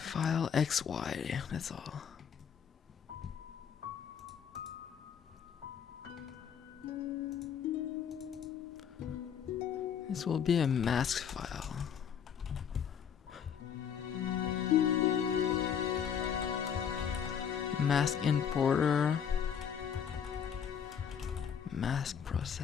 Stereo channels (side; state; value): right; quieter; 7.9 dB